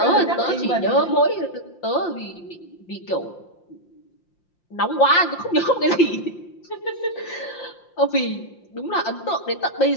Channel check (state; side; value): late; right; 5.7 ms